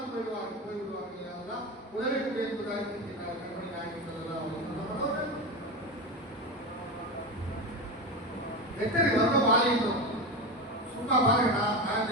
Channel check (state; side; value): normal; both; correlation 0.20